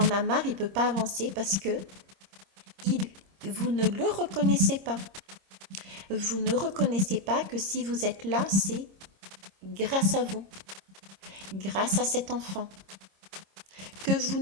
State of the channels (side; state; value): left; late; 26 ms